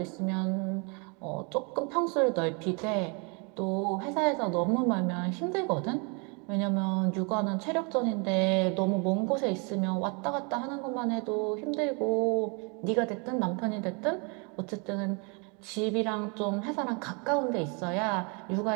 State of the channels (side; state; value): left; quieter; 33.9 dB